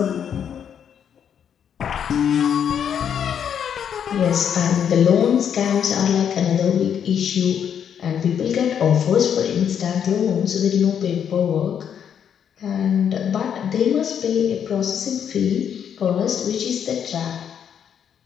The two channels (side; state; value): right; quieter; 8.4 dB